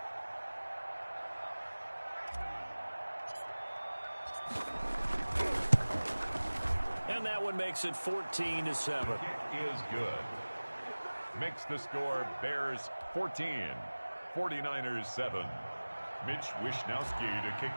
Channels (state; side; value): inverted; both; correlation -1.00